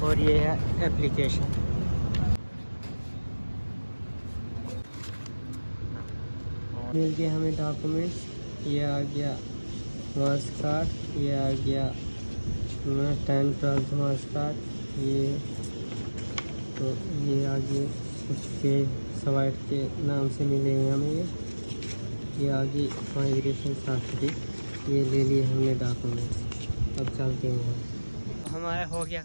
और ये है एप्लीकेशन। मिल गए हमें डॉक्यूमेंट्स। ये आ गया मार्क्स कार्ड, ये आ गया 10th मार्क्स कार्ड। ये तो ये आगे कुछ पे सवाइट के नाम से मिलेंगे हमें। ये आगे माइग्रेशन सर्टिफिकेट, ये ले लिए हमने डॉक्यूमेंट्स। अब चलते हैं। हमारा हो गया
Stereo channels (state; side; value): inverted; both; correlation -1.00